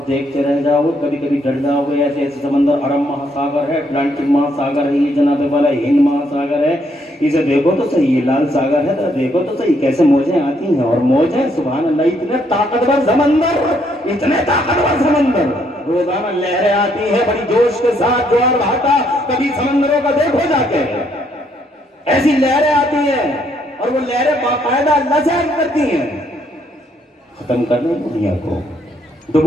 دیکھتے رہ جاؤ, کبھی کبھی ڈر جاؤ گے. ایسے ایسے سمندر, عرب مہا ساگر ہے, اٹلانٹک مہا ساگر ہے, یہ جناب والا ہند مہا ساگر ہے. اسے دیکھو تو صحیح, یہ لال ساگر ہے, تو دیکھو تو صحیح کیسے موجیں آتی ہیں اور موجیں. سبحان اللہ. اتنے طاقتور سمندر, اتنے طاقتور سمندر, روزانہ لہریں آتی ہیں بڑی جوش کے ساتھ, جوار بھاٹا. کبھی سمندروں کا دیکھو جا کے, ایسی لہریں آتی ہیں اور وہ لہریں باقاعدہ لذیذ کرتی ہیں. ختم کرنا دنیا کو,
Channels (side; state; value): both; normal; correlation 0.71